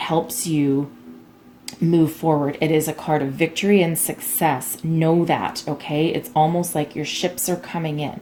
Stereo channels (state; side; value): identical; both; correlation 1.00